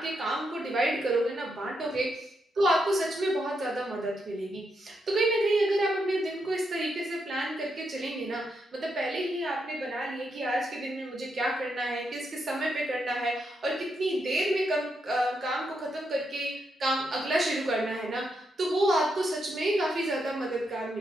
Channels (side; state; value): both; normal; correlation 0.81